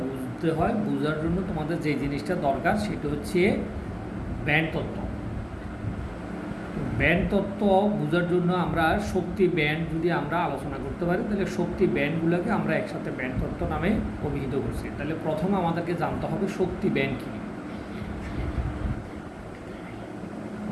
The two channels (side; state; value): both; identical; correlation 1.00